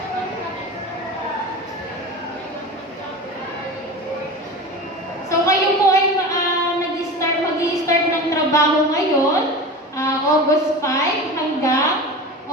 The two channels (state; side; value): normal; both; correlation 0.31